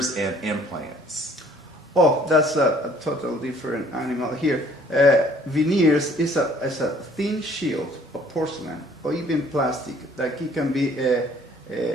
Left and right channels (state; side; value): normal; both; correlation 0.57